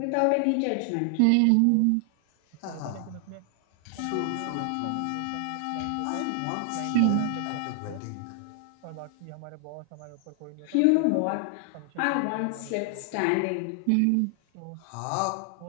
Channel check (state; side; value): different; both; correlation 0.00